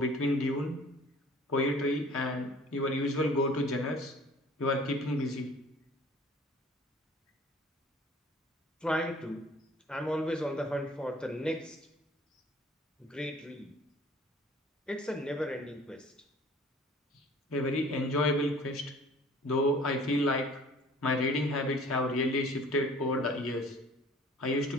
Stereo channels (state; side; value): normal; both; correlation 0.50